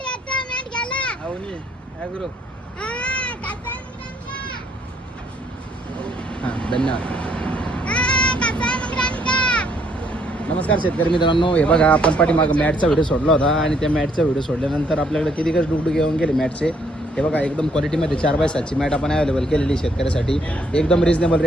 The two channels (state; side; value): normal; both; correlation 0.68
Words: आता मॅट घ्यायला? अवनी ॲग्रो. हा कसा मंगरांका? हां धन्यवाद. हा कसा मंगरांका? नमस्कार शेतकरी मित्रांनो. हे बघा आपण पाठीमागं मॅटचा व्हिडिओ सोडला होता आणि त्या मॅटचा व्हिडिओ सोडल्यानंतर आपल्याकडे किती कच डुकडुक येऊन गेले मॅटचे. हे बघा एकदम क्वालिटीमध्ये 4x7ची मॅट आपण अवेलेबल केलेली शेतकऱ्यासाठी. एकदम रिजनेबल